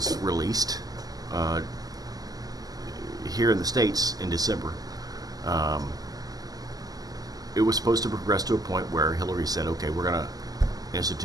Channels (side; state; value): left; late; 0.18 ms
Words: released, here in the States in December, it was supposed to progress to a point where Hillary said, okay, we're going to